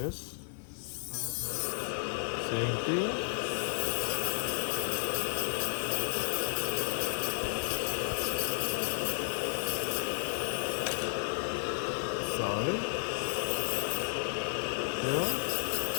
same thing. Sorry. Here.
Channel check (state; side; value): silent; right; digital silence